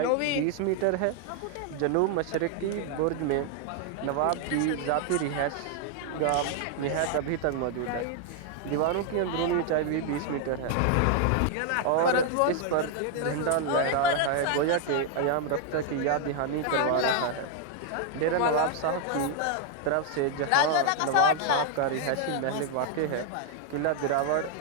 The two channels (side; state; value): both; different; correlation 0.00